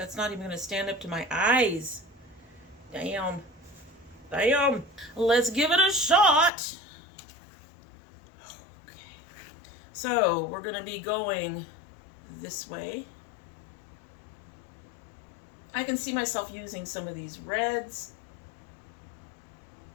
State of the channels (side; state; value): right; drops out; at 6.5 s